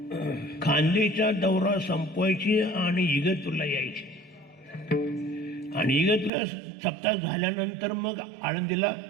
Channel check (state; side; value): drops out; left; at 6.3 s